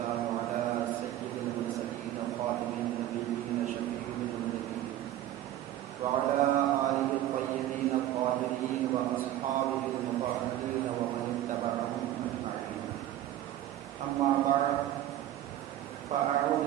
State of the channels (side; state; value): left; quieter; 13.1 dB